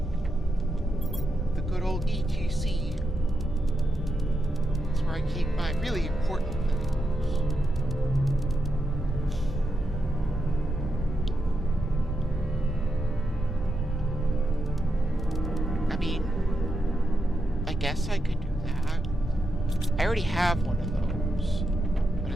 The good old ETC. That's where I keep my really important things. I mean, I guess I could do that. I already have one of those, but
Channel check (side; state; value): both; normal; correlation 0.85